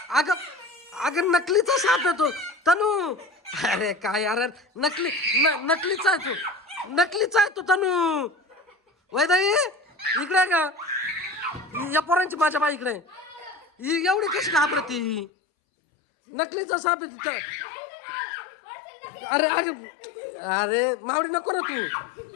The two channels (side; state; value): right; drops out; at 15.2 s